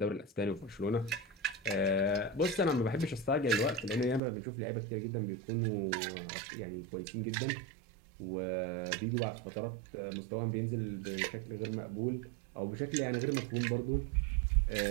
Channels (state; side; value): drops out; left; at 4.2 s